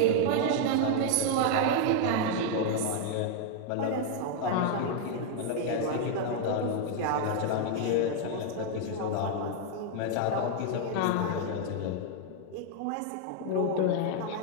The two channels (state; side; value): different; both; correlation 0.00